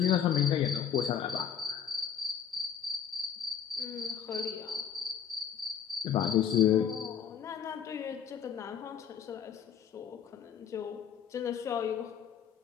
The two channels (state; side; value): quieter; right; 8.3 dB